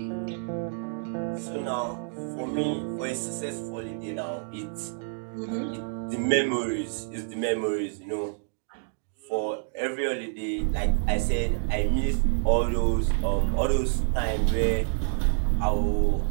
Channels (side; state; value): left; silent; digital silence